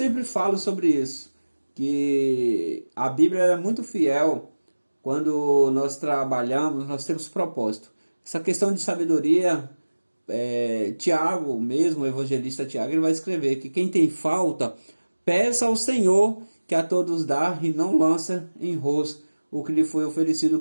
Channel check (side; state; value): both; inverted; correlation -1.00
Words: falo sobre isso, que a Bíblia é muito fiel. Quando nós trabalhamos, nós temos propósito. Essa questão de sabedoria, Tiago mesmo, o evangelista Tiago, ele vai escrever que quem tem falta, peça ao Senhor, que a todos dá, e não lança em rosto o que lhe foi oferecido, o